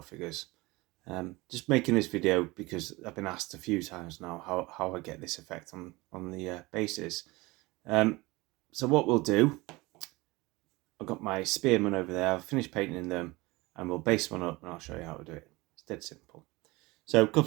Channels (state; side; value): quieter; left; 22.3 dB